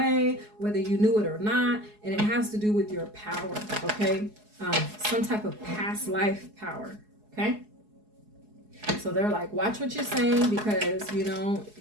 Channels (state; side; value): late; left; 4.7 ms